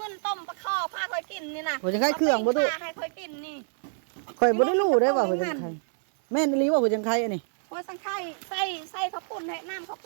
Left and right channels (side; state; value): left; silent; 60 dB below the other